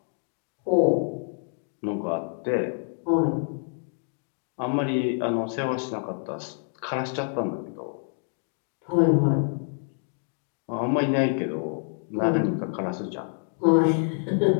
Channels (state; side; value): silent; right; 60 dB below the other